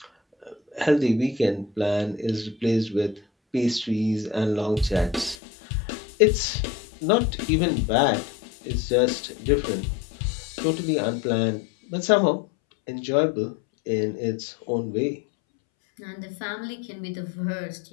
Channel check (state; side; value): drops out; right; at 5.4 s